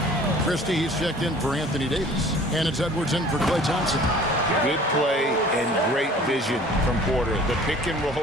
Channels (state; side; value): normal; both; correlation 0.49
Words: Christie's checked in for Anthony Davis. And it's Edwards in for Klay Thompson. Good play and great vision from Porter. The pick and